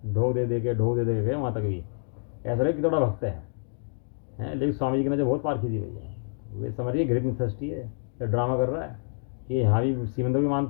ढोक दे के गए वहाँ तक भी। ऐसा लगे कि थोड़ा भक्त है, लेकिन स्वामी जी की नजर बहुत पारखी थी भैया। वे समझिए ग्रेट मिथस्टी है, ये ड्रामा कर रहा है, ये यहाँ भी श्रीमंदर भी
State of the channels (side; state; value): right; silent; digital silence